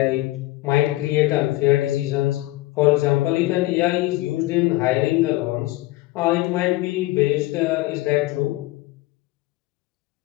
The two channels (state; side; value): quieter; right; 18.8 dB